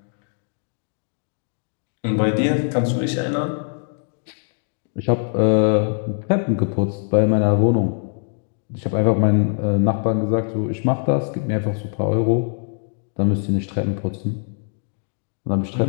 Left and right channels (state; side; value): silent; right; 55 dB below the other